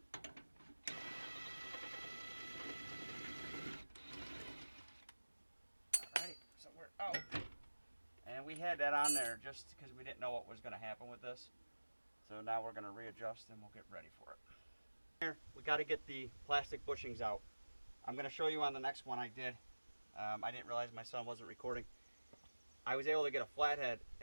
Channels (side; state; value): both; inverted; correlation -1.00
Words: Alright, so we're out. And we had that on there just because we didn't know what was going to happen with this. So now we're going to readjust and we'll get ready for it. Here, we got to get the plastic bushings out. I'm going to show you on the next one I did. I didn't realize my son wasn't recording. I was able to get a flathead